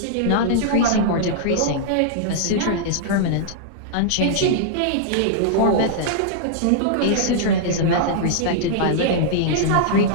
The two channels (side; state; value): both; different; correlation -0.02